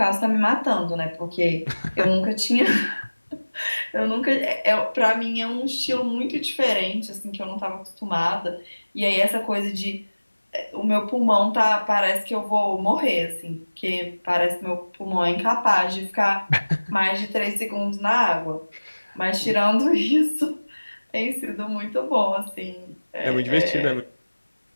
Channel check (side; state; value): both; inverted; correlation -1.00